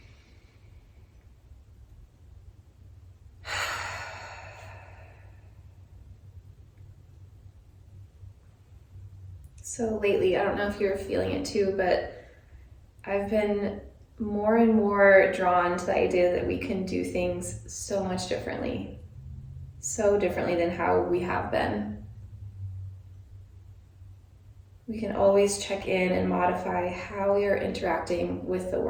So lately, I don't know if you're feeling it too, but I've been more and more drawn to the idea that we can do things so much differently. So differently than how we have been. We can always check in and modify how we are interacting with the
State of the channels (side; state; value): both; identical; correlation 1.00